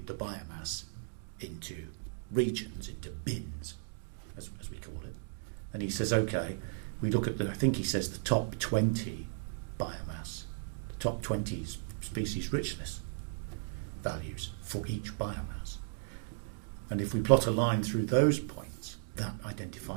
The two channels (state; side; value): silent; left; digital silence